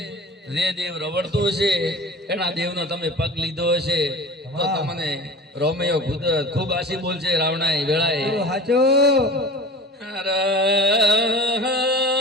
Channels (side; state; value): both; normal; correlation 0.37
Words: જે દેવ રવડતું છે એના દેવનો તમે પગ લીધો હશે તો તમને રોમિયો ખૂબ આશી બોલશે રાવણાએ વેળાએ સાચો